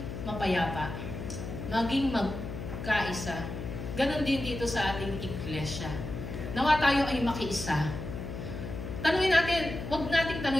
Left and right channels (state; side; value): noise; left; hum, 7 dB below the sound